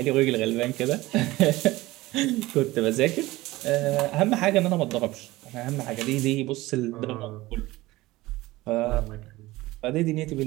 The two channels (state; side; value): quieter; left; 18.9 dB